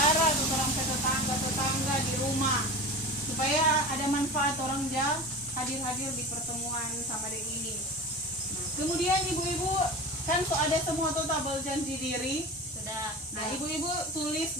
atau orang ke tetangga-tetangga di rumah, supaya ada manfaat orang hadir-hadir di pertemuan sama dek ini. Nah, kemudian ibu-ibu kan ada semua tuh tabel janji diri. Sudah. Nah, ibu-ibu tulis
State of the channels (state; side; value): normal; both; correlation 0.31